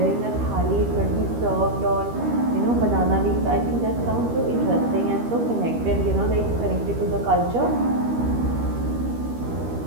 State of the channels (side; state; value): left; late; 13 ms